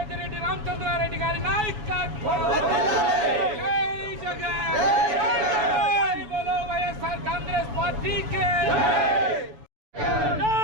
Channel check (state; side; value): late; left; 6.9 ms